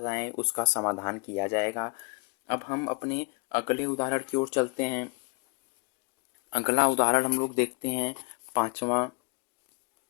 उसका समाधान किया जाएगा। अब हम अपने अगले उदाहरण की ओर चलते हैं। अगला उदाहरण हम लोग देखते हैं 5वां।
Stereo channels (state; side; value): quieter; right; 32.9 dB